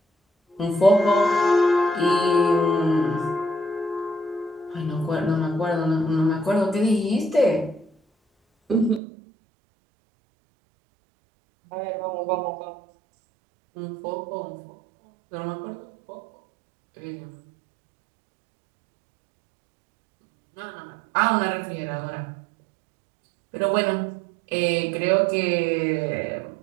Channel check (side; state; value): left; drops out; at 9.0 s